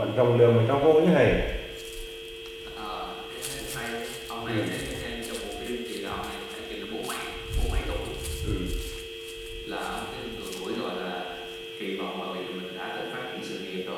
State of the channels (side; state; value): both; identical; correlation 1.00